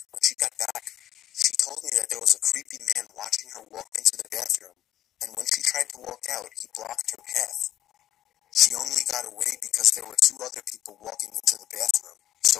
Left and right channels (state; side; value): quieter; right; 12.6 dB